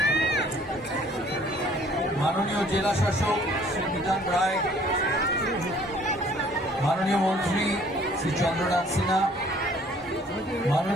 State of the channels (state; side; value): normal; both; correlation 0.56